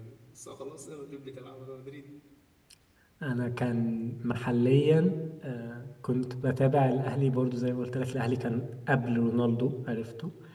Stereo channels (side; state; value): both; identical; correlation 1.00